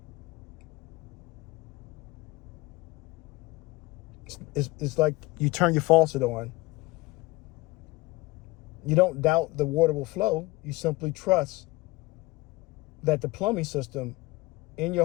It's like you turn your faucet on. You don't doubt the water will flow. You simply trust that the plumbing system in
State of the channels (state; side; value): quieter; right; 22.1 dB